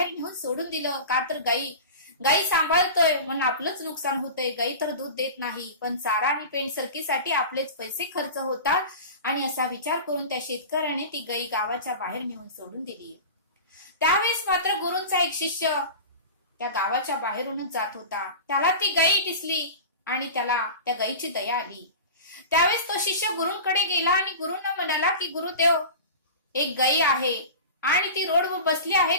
नेऊन सोडून दिलं. का तर गायी सांभाळतोय म्हणून आपलंच नुकसान होतंय. गायी तर दूध देत नाही, पण चारा आणि पेंट सरकीसाठी आपलेच पैसे खर्च होतात. आणि असा विचार करून त्या शेतकऱ्याने ती गायी गावाच्या बाहेर नेऊन सोडून दिली. त्यावेळेस मात्र गुरूंचा एक शिष्य त्या गावाच्या बाहेरूनच जात होता. त्याला ती गायी दिसली आणि त्याला त्या गायीची दया आली. त्यावेळेस तो शिष्य गुरूंकडे गेला आणि गुरूंना म्हणाला की गुरुदेव, एक गायी आहे आणि ती रोडवर बसली आहे,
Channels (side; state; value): both; inverted; correlation -0.33